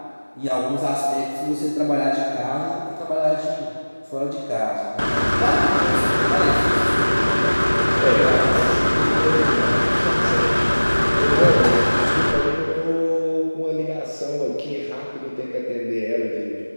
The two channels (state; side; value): inverted; both; correlation -1.00